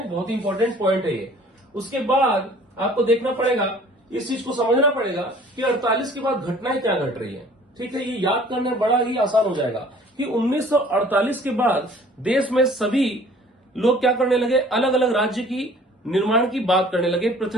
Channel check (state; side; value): normal; both; correlation 0.52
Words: बहुत ही इंपॉर्टेंट पॉइंट है ये। उसके बाद आपको देखना पड़ेगा, इस चीज को समझना पड़ेगा कि 48 के बाद घटनाएं क्या घट रही है। ठीक है, ये याद करने बड़ा ही आसान हो जाएगा कि 1948 के बाद देश में सभी लोग क्या करने लगे, अलग अलग राज्य की निर्माण की बात करने लगे,